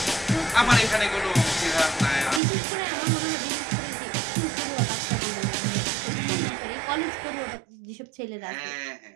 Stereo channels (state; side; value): drops out; left; at 2.4 s